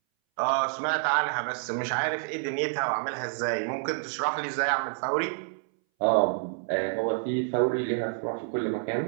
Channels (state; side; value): silent; left; 59 dB below the other